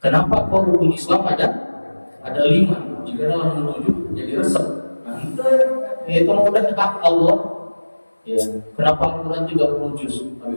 Kenapa kok rukun Islam ada 5? Jika dalam menuju jadi resep. Nah, itu udah hak Allah. Ya, kenapa Al-Quran 30 juz? Tapi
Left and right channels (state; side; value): inverted; both; correlation -1.00